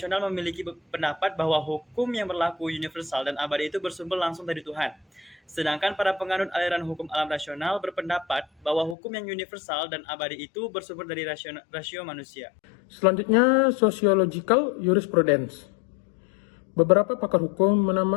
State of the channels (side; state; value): right; drops out; at 9.0 s